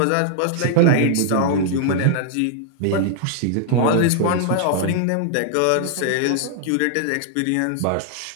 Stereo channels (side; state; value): both; different; correlation -0.01